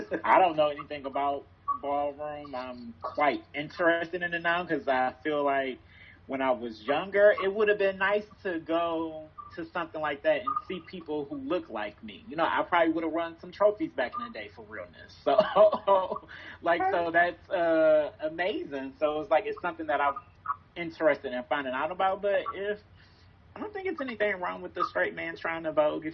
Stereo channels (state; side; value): identical; both; correlation 1.00